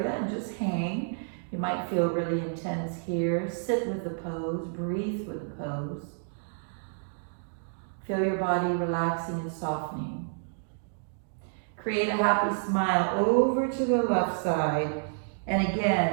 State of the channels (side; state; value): left; silent; digital silence